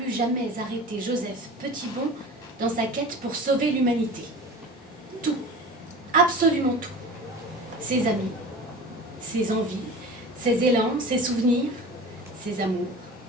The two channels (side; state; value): both; normal; correlation 0.36